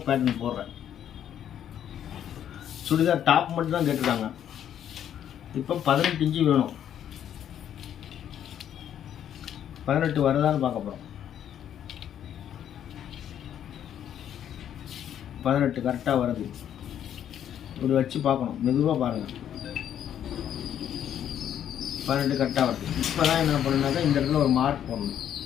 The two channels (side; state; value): right; quieter; 10.0 dB